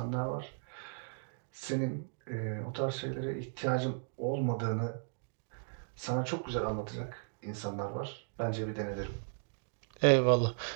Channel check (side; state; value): left; silent; digital silence